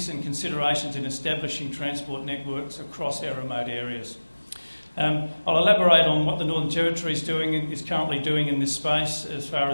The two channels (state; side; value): inverted; both; correlation -1.00